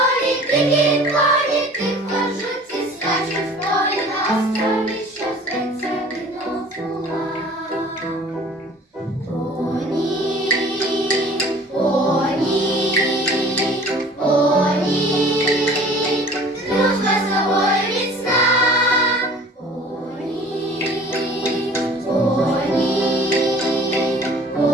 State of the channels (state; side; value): normal; both; correlation 0.48